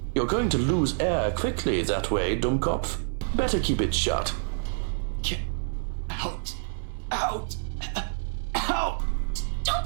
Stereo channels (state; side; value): silent; left; digital silence